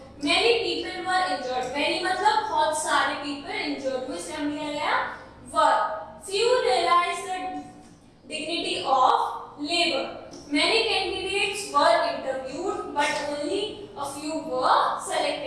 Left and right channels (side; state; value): both; identical; correlation 1.00